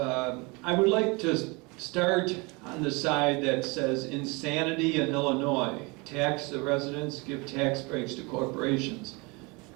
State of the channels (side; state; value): left; quieter; 27.7 dB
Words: would like to start on the side that says insanity in Illinois. Tax the residents, give tax breaks to corporations.